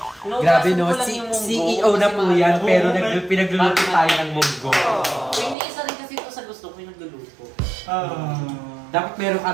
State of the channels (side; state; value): left; drops out; at 5.6 s